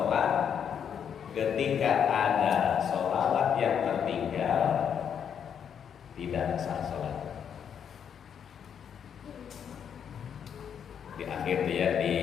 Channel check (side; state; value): right; quieter; 8.0 dB